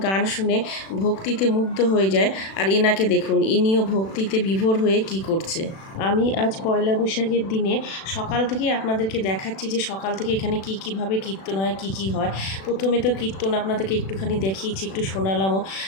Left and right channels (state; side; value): late; right; 36 ms